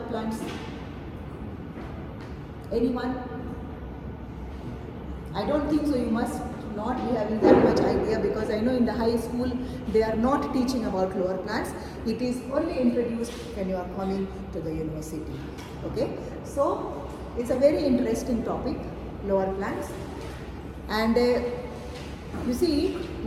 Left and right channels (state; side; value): identical; both; correlation 1.00